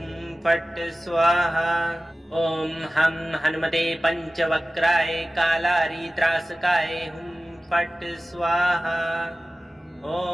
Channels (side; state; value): both; normal; correlation 0.96